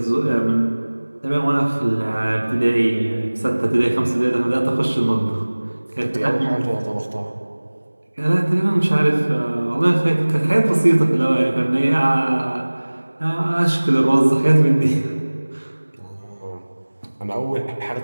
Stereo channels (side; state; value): both; inverted; correlation -1.00